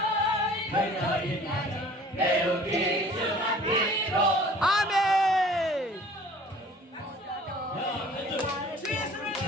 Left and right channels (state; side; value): normal; both; correlation 0.49